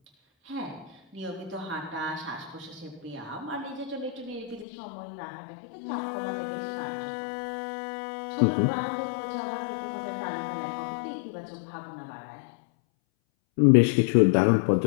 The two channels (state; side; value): drops out; right; at 4.7 s